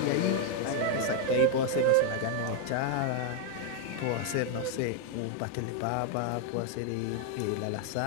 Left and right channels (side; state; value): both; different; correlation 0.00